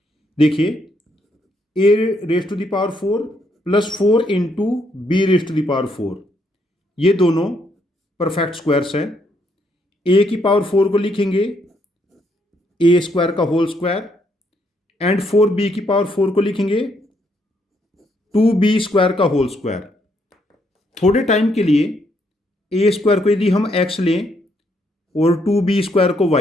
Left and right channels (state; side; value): normal; both; correlation 0.73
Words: देखिए a raised to the power 4 plus 4 into b raised to the power 4 ये दोनों perfect squares हैं। a की power 4 को लिखेंगे a square का whole square and 4b की power 4 को लिखेंगे 2b स्क्वायर का होल स्क्वायर। थोड़े टाइम के लिए a स्क्वायर को यदि हम x लें और 2b स्क्वायर को